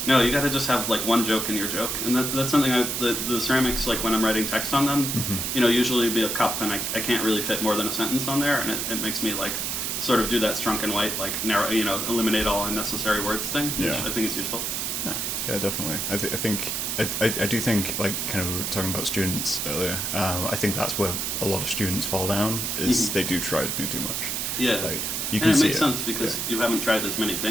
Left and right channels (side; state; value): right; noise; hiss, 1 dB below the sound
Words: no, you got to just have like one joke in your joke, and that's something the ceramics, like when I'm writing text on them, usually be a cup, and I can't really fit more than a sentence on there, and it makes me like sort of do that strunk and white, like narrow, eliminate all unnecessary words thing, which I think is useful. Yeah, definitely. I do think, like, kind of we were talking about students earlier. I think that's where a lot of students fall down is they do try to do too much. Yeah. Like, you can and it see makes sense because you haven't tried as many